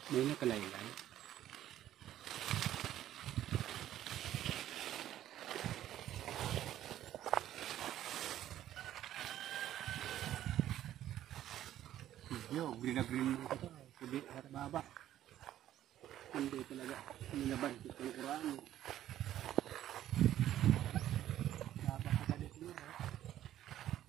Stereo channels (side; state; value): left; quieter; 12.3 dB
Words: May nakalaylay. Yo, green na green mo ito. Pudi at baba. Hindi talaga. Nilaban ito yung Quran. Napakagalit nyo.